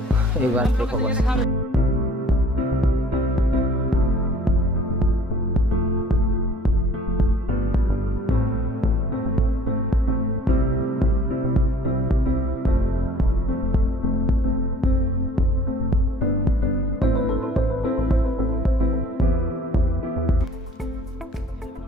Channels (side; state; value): both; normal; correlation 0.53